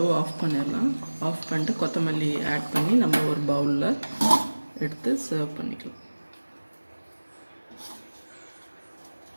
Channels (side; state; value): both; inverted; correlation -1.00